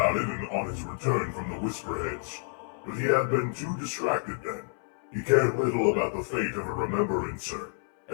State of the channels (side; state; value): right; silent; 59 dB below the other